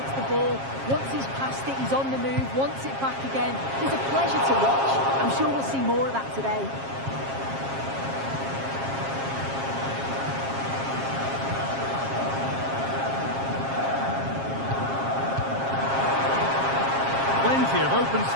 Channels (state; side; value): late; left; 7.4 ms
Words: the ball. Once he's passed it, he's on the move, wants it back again. He's a pleasure to watch. I'm sure we'll see more of that today. Plenty of open